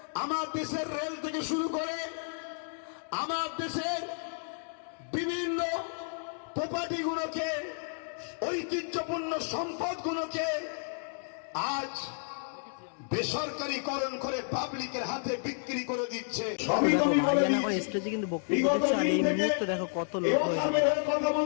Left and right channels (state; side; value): silent; right; digital silence